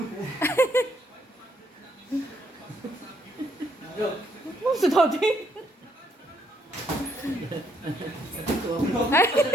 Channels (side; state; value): both; normal; correlation 0.71